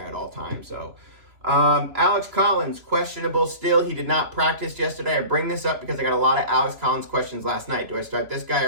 at all times. So. Alex Collins, questionable still. He did not practice yesterday. I bring this up because I got a lot of Alex Collins questions last night. Do I start this guy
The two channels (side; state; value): left; late; 3.0 ms